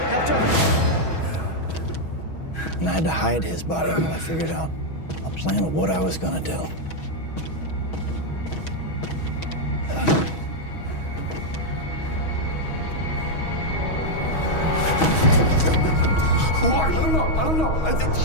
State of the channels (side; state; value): right; late; 6.2 ms